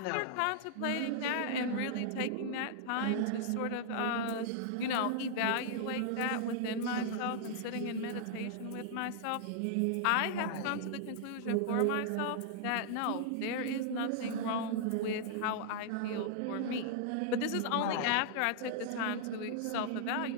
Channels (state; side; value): different; both; correlation -0.01